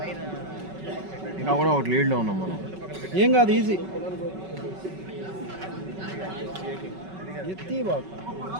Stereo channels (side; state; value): left; late; 5.3 ms